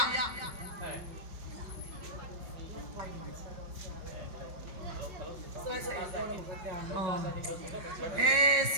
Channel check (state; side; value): late; left; 5.4 ms